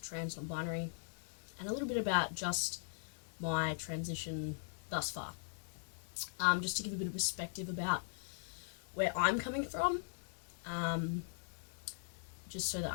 trans non-binary, and a little bit about just my transition thus far. Just to give a bit of perspective about where I'm coming from, just so that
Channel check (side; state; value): right; silent; digital silence